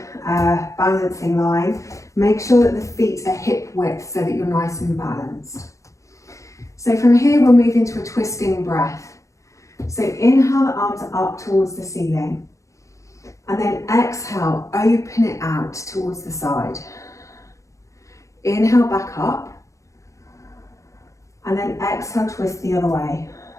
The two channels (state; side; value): late; right; 0.15 ms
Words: balancing line. Make sure that the feet are hip width so that you're nice and balanced. So from here, we'll move into a twisting breath. So inhale the arms up towards the ceiling and then exhale, open it out towards the side. Inhale back up and then exhale, twist the other way.